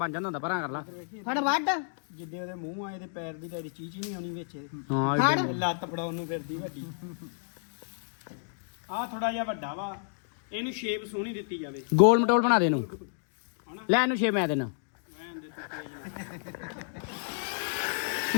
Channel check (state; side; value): silent; right; digital silence